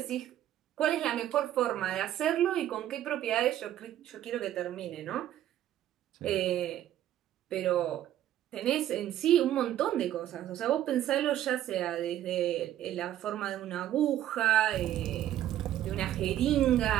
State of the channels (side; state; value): left; quieter; 12.2 dB